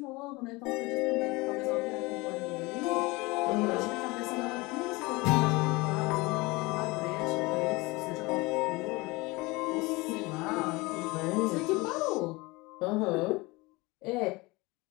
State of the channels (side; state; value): right; quieter; 23.5 dB